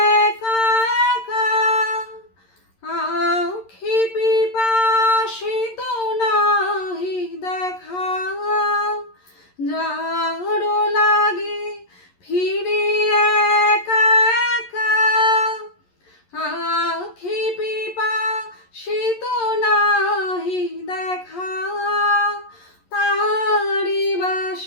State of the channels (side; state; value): right; late; 11 ms